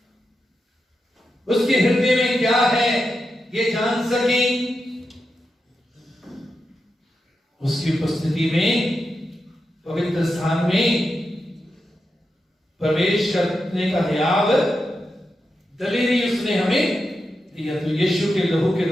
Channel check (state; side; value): normal; both; correlation 0.88